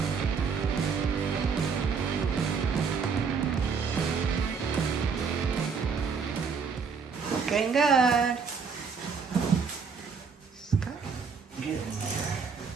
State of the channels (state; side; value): quieter; left; 5.7 dB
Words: Getting good. Get in there.